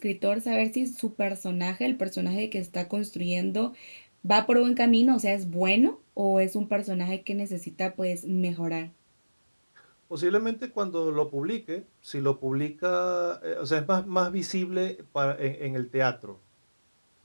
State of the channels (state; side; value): inverted; both; correlation -1.00